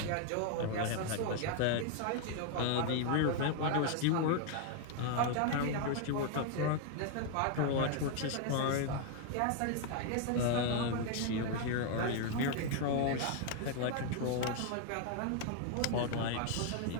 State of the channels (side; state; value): both; different; correlation 0.00